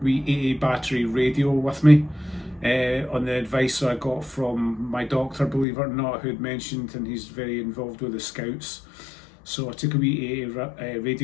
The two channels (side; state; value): right; drops out; at 5.7 s